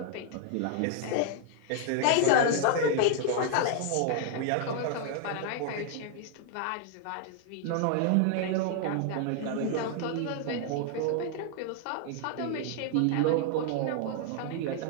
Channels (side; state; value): both; different; correlation 0.00